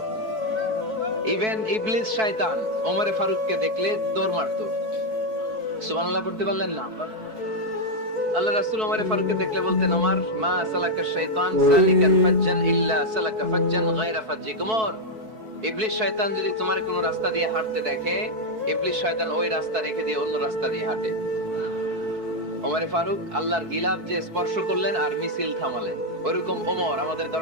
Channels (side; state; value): left; late; 4.6 ms